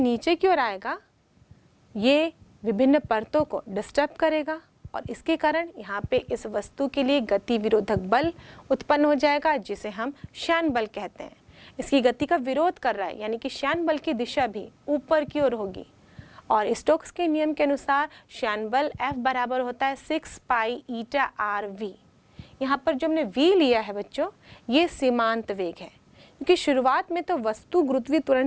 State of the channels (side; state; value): both; identical; correlation 1.00